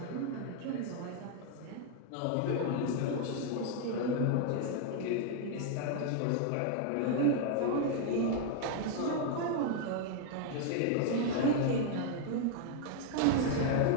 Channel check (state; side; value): different; both; correlation 0.00